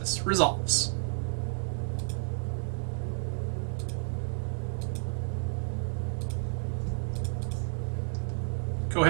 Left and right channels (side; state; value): left; silent; digital silence